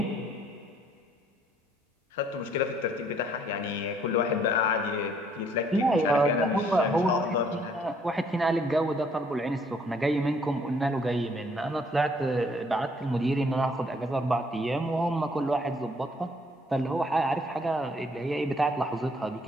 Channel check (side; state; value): both; normal; correlation 0.65